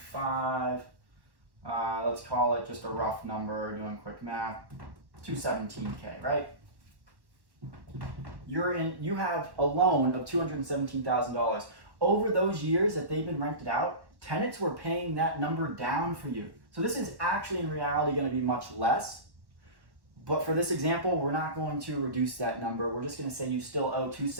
Let's call it just a rough number, doing quick math, 217K, right? You have a loan of $217,000. Over those years that they've been rented out, tenants were paying that number down for you. So this is actually in reality going to be much less. But for this example, we're not going to reduce that number. We're just going to say you still owe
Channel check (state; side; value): late; left; 1.1 ms